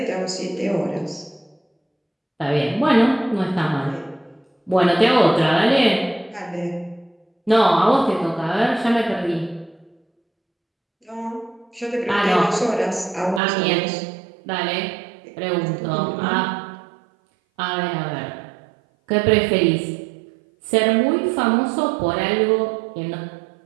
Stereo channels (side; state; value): left; drops out; at 13.4 s